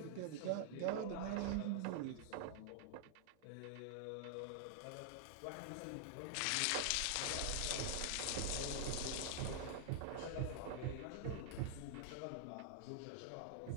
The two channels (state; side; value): different; both; correlation -0.01